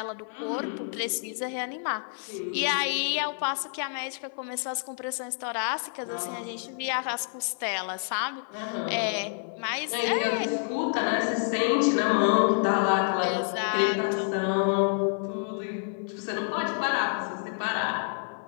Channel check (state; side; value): silent; right; 59 dB below the other